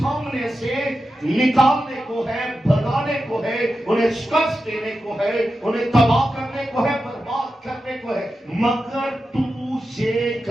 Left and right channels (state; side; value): normal; both; correlation 0.91